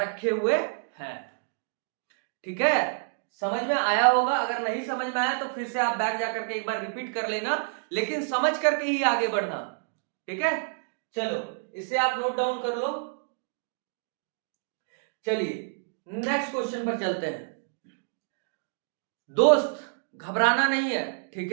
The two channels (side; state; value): left; silent; digital silence